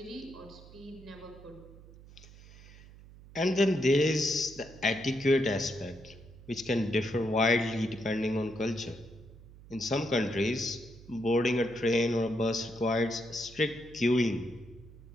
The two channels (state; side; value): noise; right; hum, 20 dB below the sound